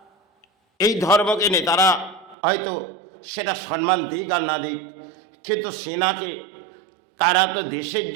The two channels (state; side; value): drops out; left; at 2.4 s